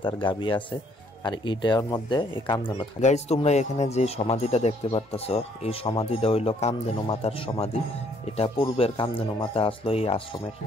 গাবি আছে, আর এইটার মধ্যে এই কামধেনু থাকে। গাইস তোমরা এখানে যে সমাধিটা দেখতে পারতাছো, এই সমাধিটা হইলো কামধেনু মাতার সমাধি। এটা পূর্বের কামধেনু মাতা আসলো এই আশ্রমের।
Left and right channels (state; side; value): normal; both; correlation 0.65